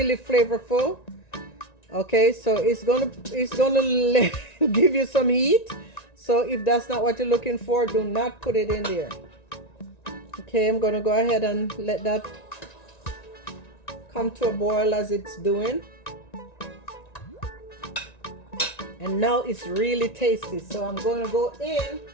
flavorful. Okay, so it's gonna give you some heat. So if that's not what you're looking for, do not put it in there. Okay, I'm gonna go ahead and let that come to a boil as it's doing. And now it's really tasty. So I'm gonna go in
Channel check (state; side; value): late; right; 1.9 ms